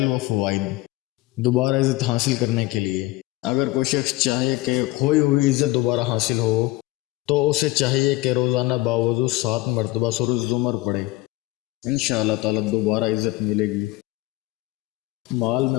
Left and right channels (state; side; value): quieter; right; 19.3 dB